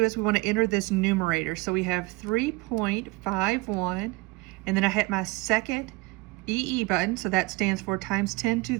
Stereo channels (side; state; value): left; quieter; 23.0 dB